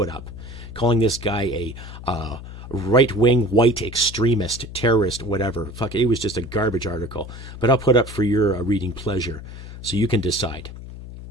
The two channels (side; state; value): left; noise; hum, 13 dB below the sound